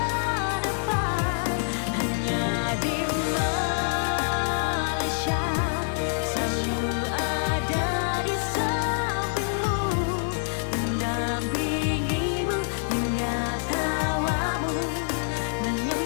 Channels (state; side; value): silent; right; 61 dB below the other